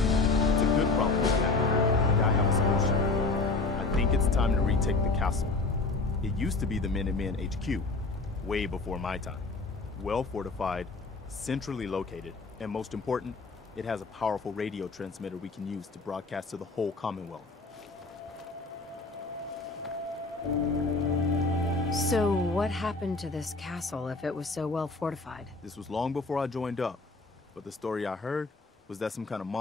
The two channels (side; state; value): right; quieter; 3.6 dB